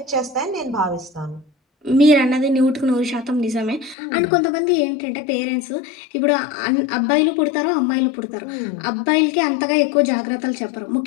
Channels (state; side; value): drops out; right; at 4.0 s